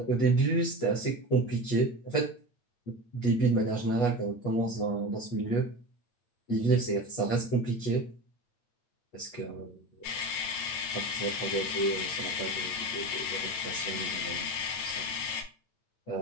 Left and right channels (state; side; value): late; right; 9.2 ms